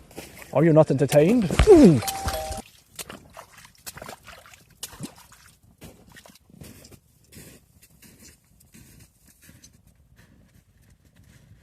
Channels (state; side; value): identical; both; correlation 1.00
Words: Are you not entertained? Ooh.